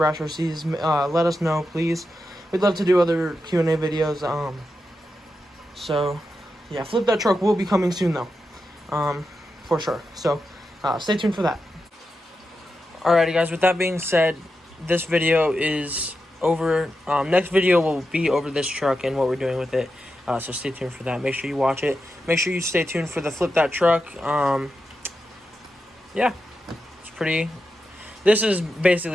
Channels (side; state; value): both; normal; correlation 0.88